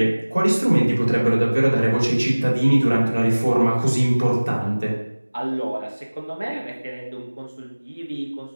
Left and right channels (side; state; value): both; inverted; correlation -1.00